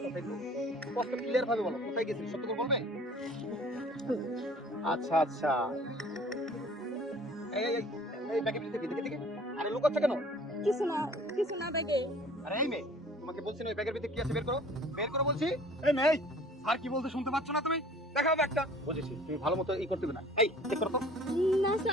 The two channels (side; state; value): both; normal; correlation 0.50